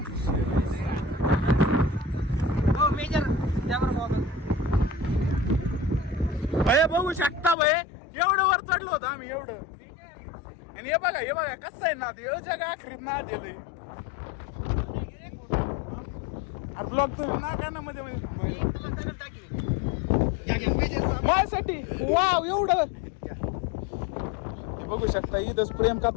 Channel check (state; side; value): drops out; right; at 7.6 s